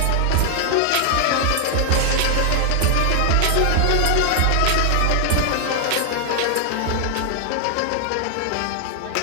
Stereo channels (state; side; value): different; both; correlation 0.00